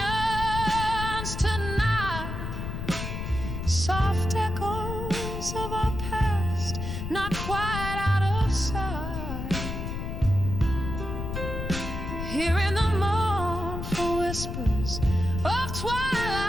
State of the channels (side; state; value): left; noise; rumble, 5 dB below the sound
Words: tonight, soft echoes of our past, not quite out of sight. Hearing the mournful whispers of